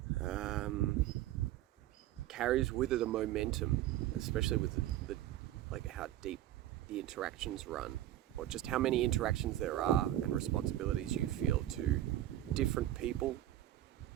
carries with it a momentum, especially with the how deep the interactions run, or just how many interactions there are and responsibilities you feel to different people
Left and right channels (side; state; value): left; quieter; 13.6 dB